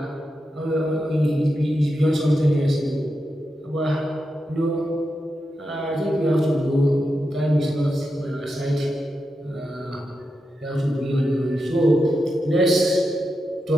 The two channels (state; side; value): normal; both; correlation 0.88